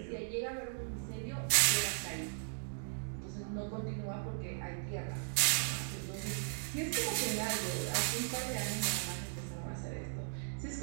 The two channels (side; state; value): left; silent; digital silence